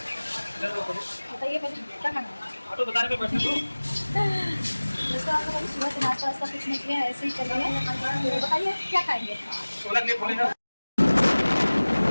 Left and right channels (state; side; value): inverted; both; correlation -1.00